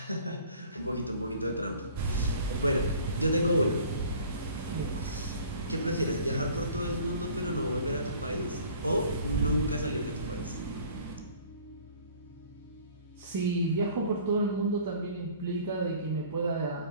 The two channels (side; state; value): both; inverted; correlation -0.50